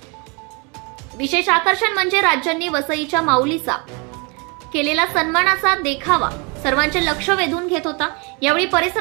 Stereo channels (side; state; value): left; quieter; 31.4 dB